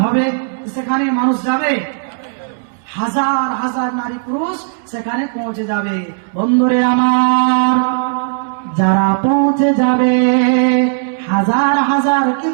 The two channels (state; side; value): silent; left; 65 dB below the other